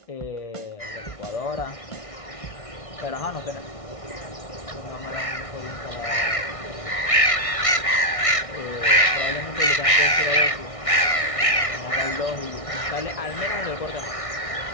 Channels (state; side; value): late; right; 1.6 ms